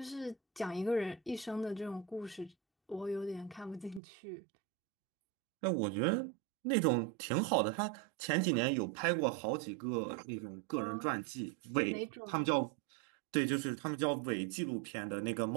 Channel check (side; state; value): left; drops out; at 4.0 s